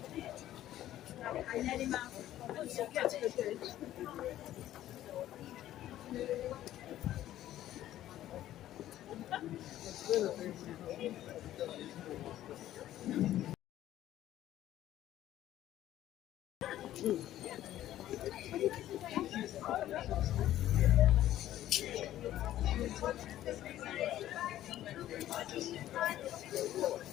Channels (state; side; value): quieter; right; 13.1 dB